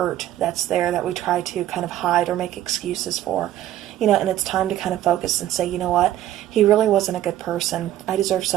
that's there that we try to kind of hide or make excuses for. You know, and it's time to kind of focus and say, you know what, he really wasn't a good person. I deserve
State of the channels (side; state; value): left; quieter; 12.9 dB